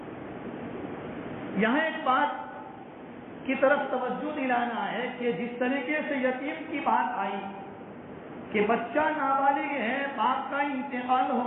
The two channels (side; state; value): both; identical; correlation 1.00